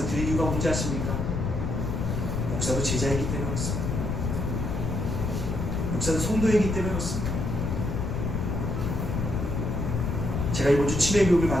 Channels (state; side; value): noise; left; rumble, 1 dB below the sound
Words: 드릴 이유가 뭔지 아십니까? 목사도 제자이기 때문에 그렇습니다. 목사도 성도이기 때문에 그렇습니다. 제가 이번 주 치매교육을